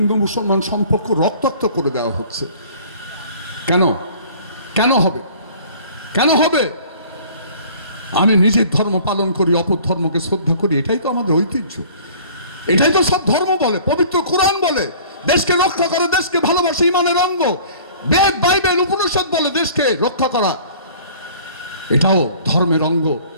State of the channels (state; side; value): inverted; both; correlation -0.49